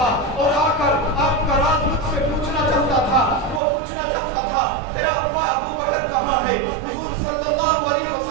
اور آ کر آپ کا راز مجھ سے پوچھنا چاہتا تھا، وہ پوچھنا چاہتا تھا تیرا ابا ابو بکر کہاں ہے؟ حضور صلی اللہ علیہ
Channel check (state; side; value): drops out; left; at 3.6 s